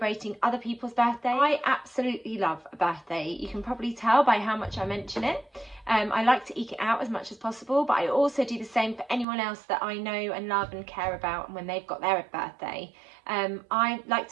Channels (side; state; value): left; drops out; at 9.2 s